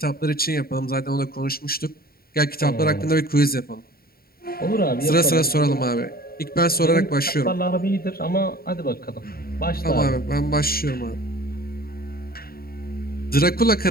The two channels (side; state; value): right; late; 0.44 ms